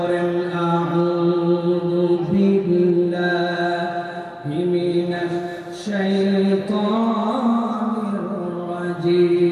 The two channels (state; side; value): identical; both; correlation 1.00